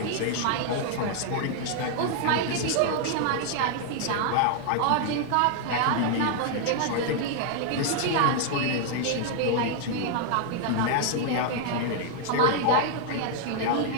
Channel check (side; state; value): both; different; correlation 0.00